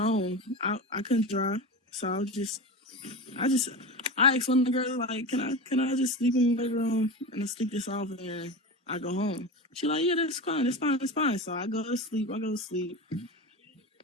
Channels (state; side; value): normal; both; correlation 0.25